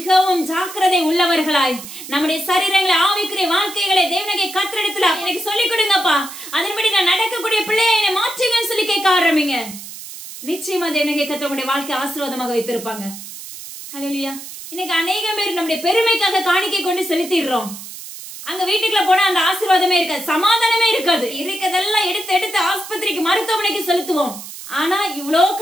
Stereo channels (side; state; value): right; noise; hiss, 12 dB below the sound